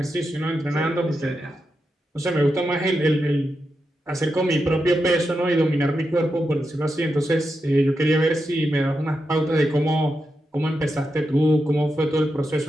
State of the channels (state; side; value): normal; both; correlation 0.87